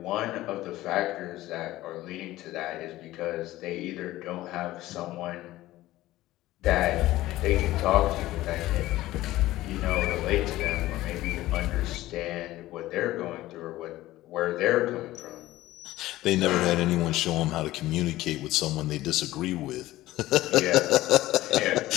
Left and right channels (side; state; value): right; quieter; 16.3 dB